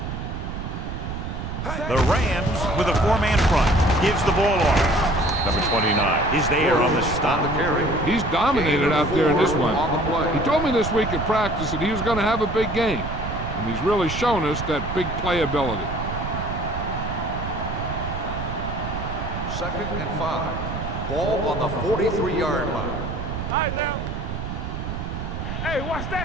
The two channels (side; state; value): right; noise; rumble, 5 dB below the sound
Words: The Rams with a 4-man front. Gives the ball off. Number 29 is there on the stop. He's dominated out there in this one. He told me this week at practice that he was going to have a big game, and he's really shown us that big playability. 2nd and 5. Ball on the 43-yard line. All right, now. Hey, watch